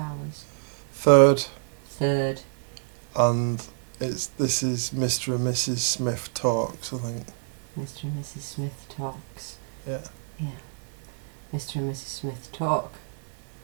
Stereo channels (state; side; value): silent; left; digital silence